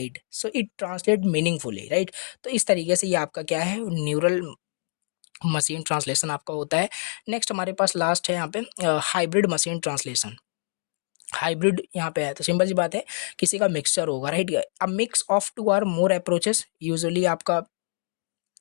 so it translate meaningfully, right. तो इस तरीके से ये आपका क्या है, न्यूरल मशीन ट्रांसलेशन आपका होता है। नेक्स्ट हमारे पास लास्ट है यहाँ पे हाइब्रिड मशीन ट्रांसलेशन। हाइब्रिड यहाँ पे है तो सिंपल सी बात है, किसी का मिक्सचर होगा, right. A mix of two or more approaches, usually आपका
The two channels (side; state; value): right; silent; digital silence